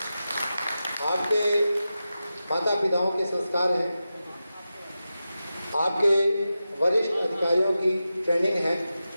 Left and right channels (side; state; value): both; inverted; correlation -0.92